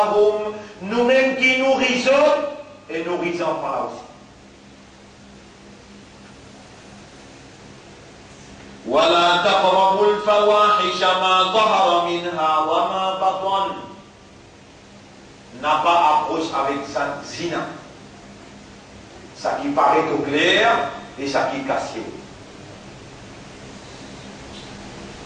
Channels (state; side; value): identical; both; correlation 1.00